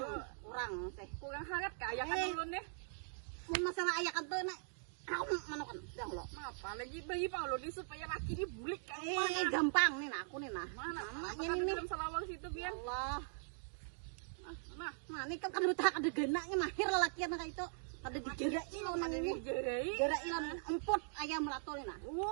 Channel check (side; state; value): left; silent; digital silence